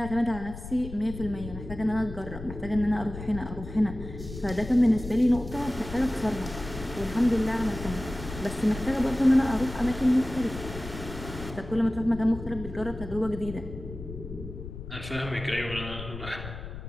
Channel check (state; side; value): noise; left; rumble, 11 dB below the sound